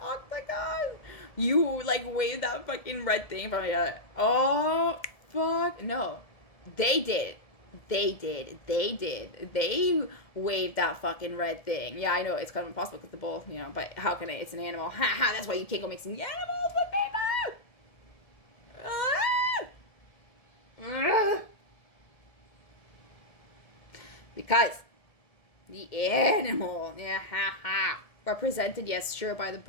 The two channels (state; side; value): late; right; 1.7 ms